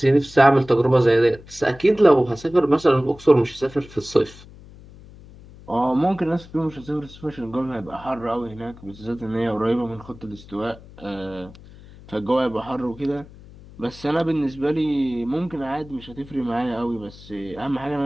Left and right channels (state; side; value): noise; left; hum, 20 dB below the sound